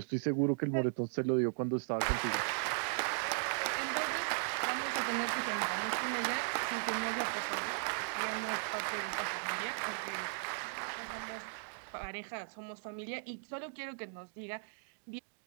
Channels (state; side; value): silent; left; digital silence